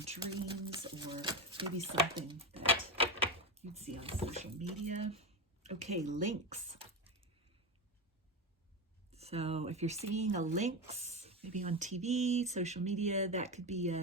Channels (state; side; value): normal; both; correlation 0.16